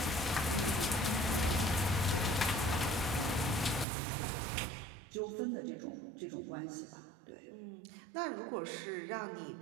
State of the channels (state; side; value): drops out; left; at 3.9 s